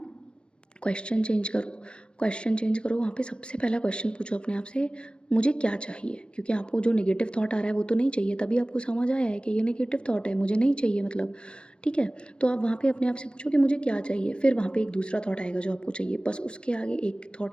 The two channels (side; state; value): right; late; 0.053 ms